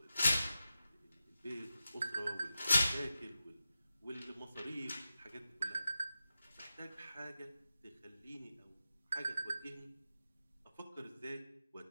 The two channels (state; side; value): inverted; both; correlation -0.91